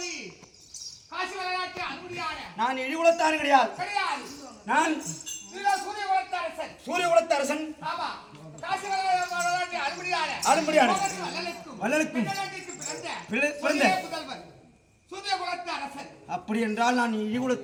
நான் இழிகுலத்தான் கிடையாது. நான் சூரிய குலத்து அரசன். அப்படி என்றால் நான்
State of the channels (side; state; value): both; identical; correlation 1.00